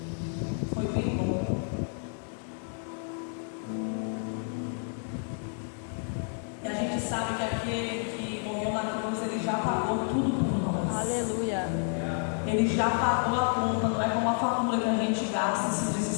bom. E a gente sabe que aquele que morreu na cruz, ele já pagou tudo por nós. Aleluia. Ele já pagou a conta, não é como a fatura que a gente gasta e se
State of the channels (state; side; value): silent; right; 58 dB below the other